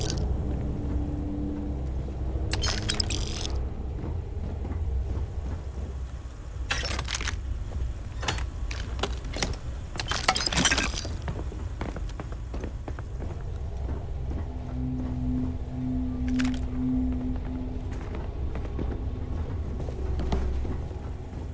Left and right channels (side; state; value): both; identical; correlation 1.00